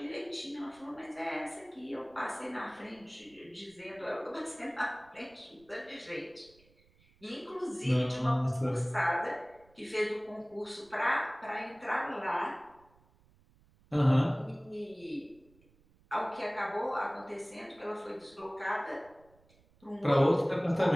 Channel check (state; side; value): noise; right; rumble, 30 dB below the sound